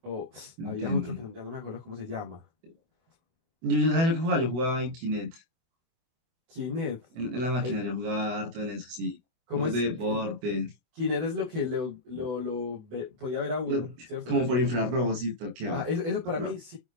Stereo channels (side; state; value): left; late; 24 ms